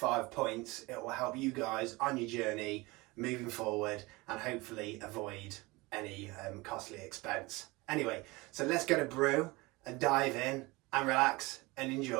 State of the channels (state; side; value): quieter; left; 23.2 dB